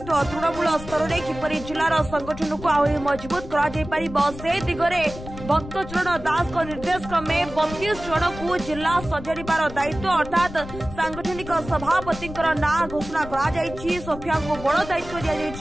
तृणमूल स्तर में किपर जिलार संगठन को आहरी मजबूत कर दिगरे भक्तचरण दास निर्देश क्रमे 32 जन को जिला सजाड़ार दायित्व अर्थात सांगठनिक सभापति ना घोषणा कर सोफिया को बड़ दायित्व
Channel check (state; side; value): noise; left; rumble, 12 dB below the sound